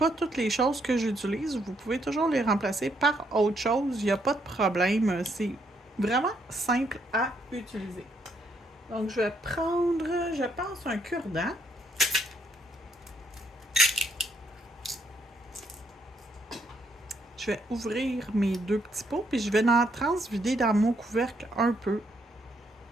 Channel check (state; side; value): normal; both; correlation 0.74